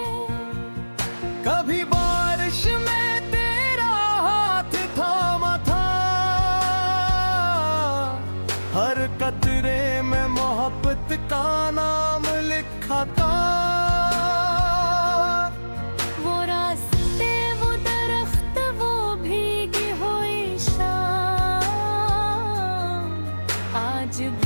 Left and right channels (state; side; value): inverted; both; correlation -1.00